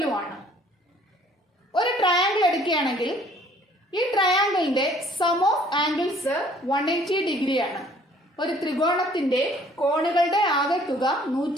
ഒരു ട്രയാങ്കിൾ എടുക്കുകയാണെങ്കിൽ ഈ ട്രയാങ്കിളിന്റെ സം ഓഫ് ആംഗിൾസ് 180 ഡിഗ്രിയാണ്. ഒരു ത്രികോണത്തിന്റെ കോണുകളുടെ ആകെത്തുക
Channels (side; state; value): both; normal; correlation 0.57